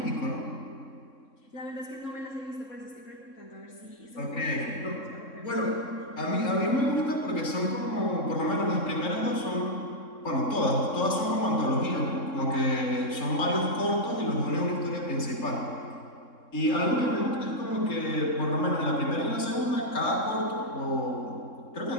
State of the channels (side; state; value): right; late; 3.6 ms